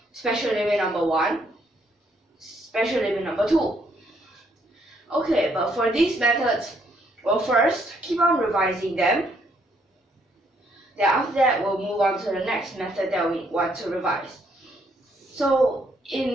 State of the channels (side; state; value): both; normal; correlation 0.70